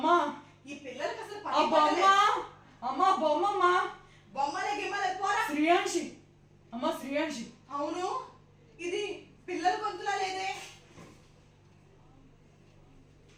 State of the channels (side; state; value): both; identical; correlation 1.00